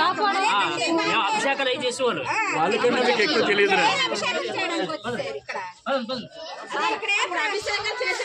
అభిషేకాలు అవి చేసేవాళ్ళు. వాళ్ళకన్నా మీకు ఎక్కువ తెలియదు.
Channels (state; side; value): identical; both; correlation 1.00